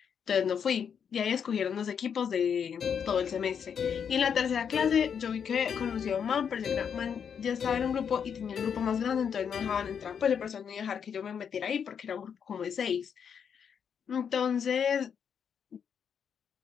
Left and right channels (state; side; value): quieter; right; 7.4 dB